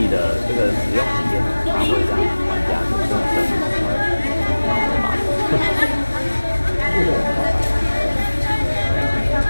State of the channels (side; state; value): both; inverted; correlation -1.00